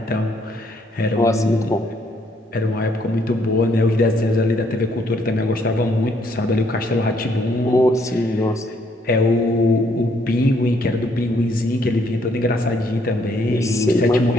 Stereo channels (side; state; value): both; normal; correlation 0.69